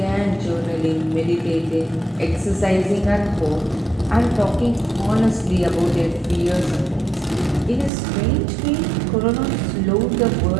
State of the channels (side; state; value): left; drops out; at 7.9 s